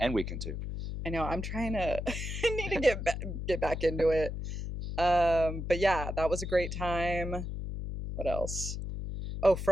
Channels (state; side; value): noise; left; hum, 5 dB below the sound